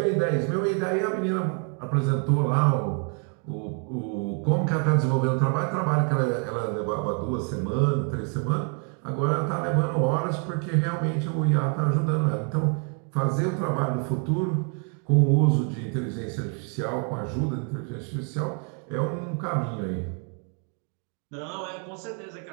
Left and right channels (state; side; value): quieter; left; 39.9 dB